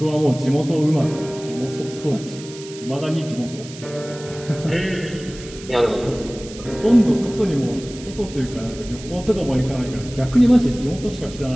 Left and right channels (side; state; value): right; noise; hiss, 16 dB below the sound